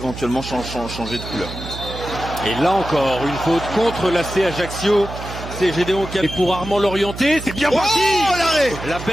changer de couleur. Et là encore, une faute contre l'AC Ajaccio. C'est Gédéon qui a... Et pour Armand Lorienté, c'est bien parti. La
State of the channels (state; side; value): noise; right; hum, 10 dB below the sound